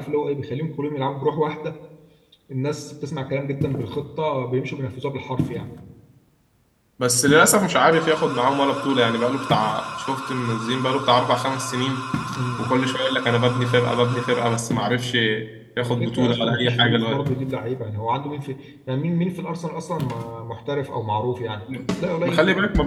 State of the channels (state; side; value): identical; both; correlation 1.00